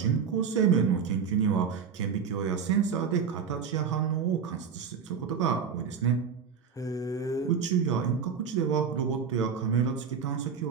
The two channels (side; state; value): left; quieter; 6.6 dB